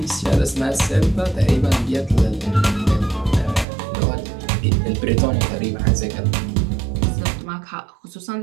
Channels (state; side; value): drops out; left; at 3.7 s